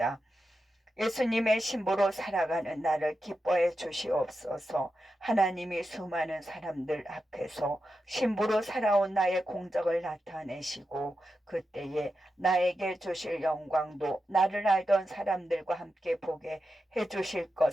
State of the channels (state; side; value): normal; both; correlation 0.89